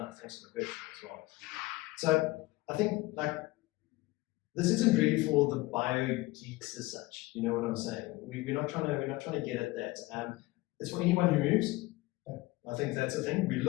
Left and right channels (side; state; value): right; quieter; 20.3 dB